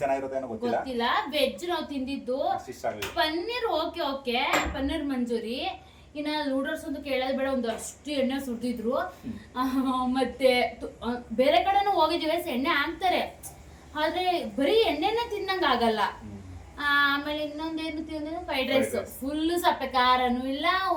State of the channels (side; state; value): both; identical; correlation 1.00